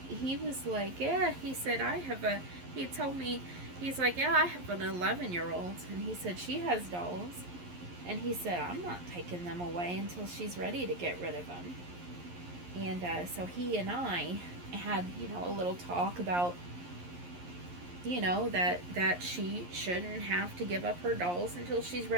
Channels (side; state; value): left; late; 11 ms